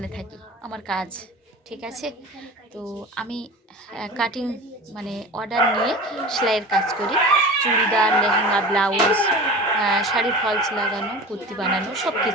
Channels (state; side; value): normal; both; correlation 0.35